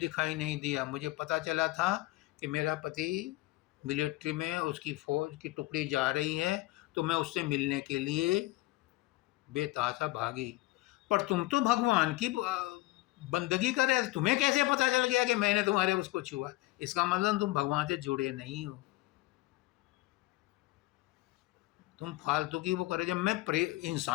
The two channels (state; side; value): quieter; right; 19.3 dB